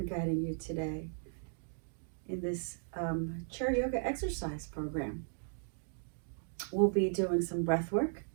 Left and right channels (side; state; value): left; silent; digital silence